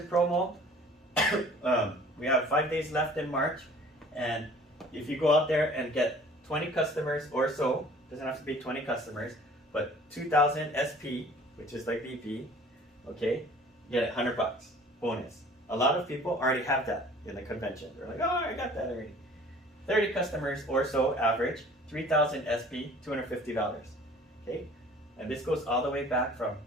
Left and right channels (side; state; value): both; normal; correlation 0.50